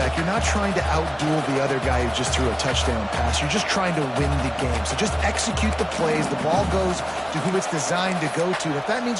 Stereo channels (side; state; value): both; identical; correlation 1.00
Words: You're not trying to outduel the other guy who just threw a touchdown pass. You're just trying to win the game. So just execute the plays. The ball goes to who it's designed to go to. If that means